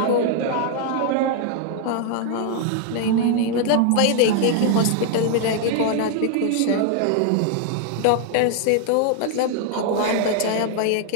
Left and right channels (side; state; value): both; different; correlation 0.00